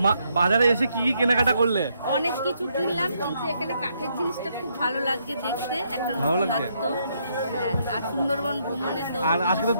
বাজারে এসে কি কি কেনাকাটা করলে? অনেক কিছু কিনলাম, কিন্তু এখানে কাঠের জিনিসটা খুব ভালো লাগছে দেখতে, একটা ভালো লাগছে? নতুনত্ব। হ্যাঁ, আর সুন্দরবন ভ্রমণে তো আর আজকে তো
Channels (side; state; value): both; inverted; correlation -0.75